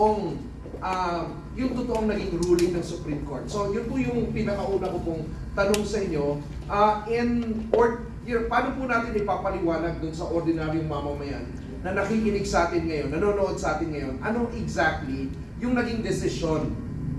naging ruling ng Supreme Court. So, yun po yung pinakauna ko pong tanong sa inyo. Paano po natin ipapaliwanag dun sa ordinaryong mamamayan na nakikinig sa atin ngayon, nanonood sa atin ngayon, ano exactly yung naging decision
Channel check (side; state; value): both; identical; correlation 1.00